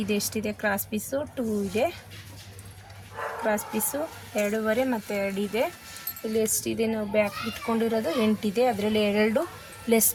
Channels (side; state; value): both; identical; correlation 1.00